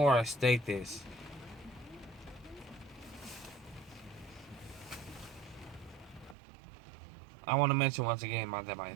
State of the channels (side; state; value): left; drops out; at 6.4 s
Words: I state this, I want to mention once again that my